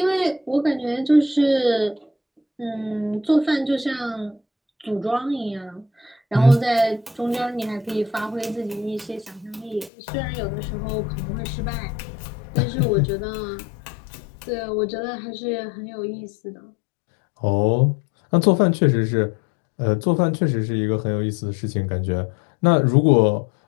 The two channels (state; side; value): drops out; right; at 9.9 s